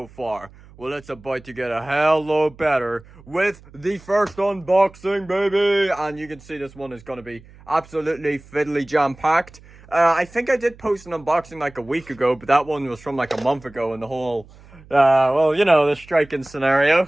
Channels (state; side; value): noise; right; hum, 23 dB below the sound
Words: far? Well, it's about to get a hell lot better with the first unboxing, baby! And you can see this one is going to be absolutely fiddly jam-packed. I think I did post an unboxing like a week ago, but that one was from like a month ago, and the whole, well, you know, the striking scenario,